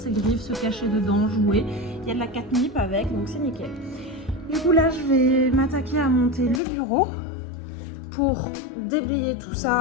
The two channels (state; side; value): drops out; right; at 6.6 s